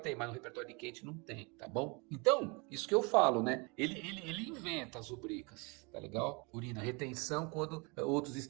tem, mas no repertório quente não tem, tá bom? Então, isso que eu falo, né? Ele inventa as rubricas, tá legal? Urina, retenção quando outros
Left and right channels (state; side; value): quieter; left; 30.1 dB